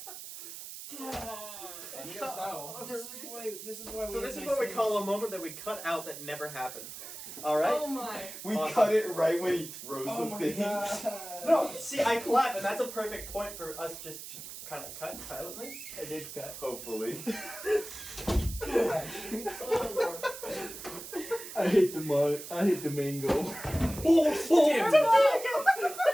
You guys know. This is why we So have this is nice what we things. call a moment that we cut out that never happened. All right? Oh my. We Awesome. cut it right when he throws Oh the my thing. god. No, see, I clap, and that's a perfect point for us just kind of cut silently. I did cut. Hopefully. Oh Lord. I hate the mango. Damn.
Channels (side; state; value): right; noise; hiss, 11 dB below the sound